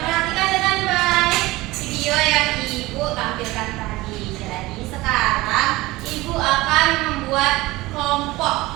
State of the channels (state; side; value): quieter; left; 19.7 dB